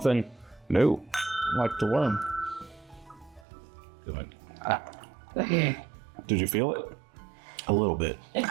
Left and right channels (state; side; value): drops out; left; at 3.5 s